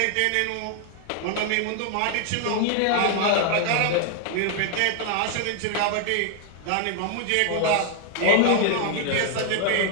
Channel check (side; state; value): both; different; correlation 0.00